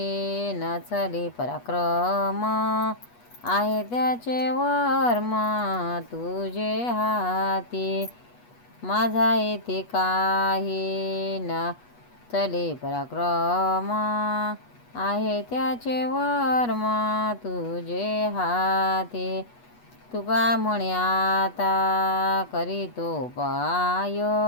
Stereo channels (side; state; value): right; late; 8.3 ms